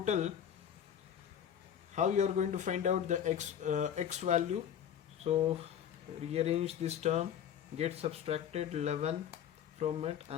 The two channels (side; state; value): right; quieter; 9.2 dB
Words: how you are going to find out the X value? So rearrange this term, get subtracted 11 from it